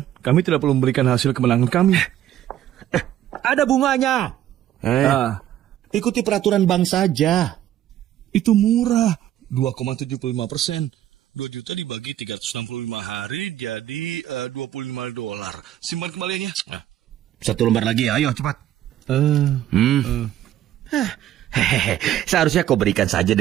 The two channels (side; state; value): left; quieter; 12.1 dB